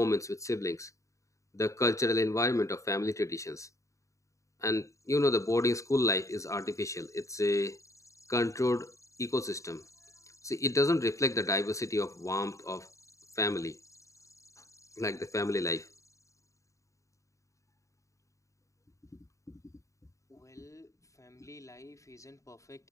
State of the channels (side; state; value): right; late; 0.15 ms